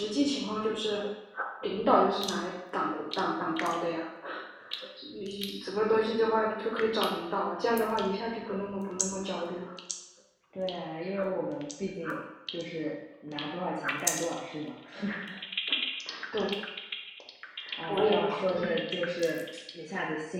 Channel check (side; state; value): both; identical; correlation 1.00